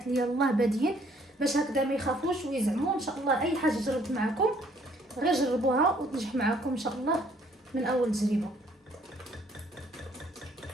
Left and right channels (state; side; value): normal; both; correlation 0.63